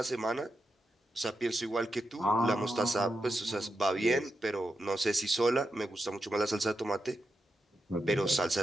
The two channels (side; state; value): both; normal; correlation 0.87